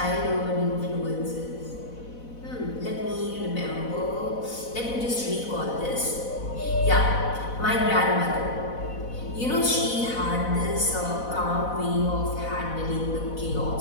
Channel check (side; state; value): right; late; 4.0 ms